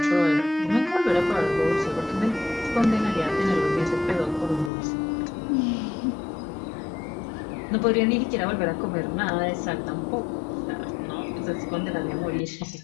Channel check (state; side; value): drops out; right; at 4.7 s